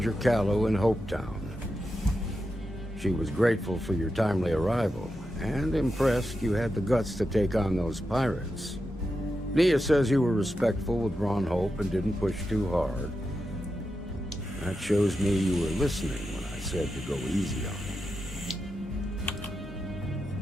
Callow in Hopetown. She was grateful for your timely arrival, and impressed you had the guts to take on those pirates. Nia says you were respectful with Ron Hope and didn't push too hard. That shows me you were listening when I said to go easy on him.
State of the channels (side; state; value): both; normal; correlation 0.88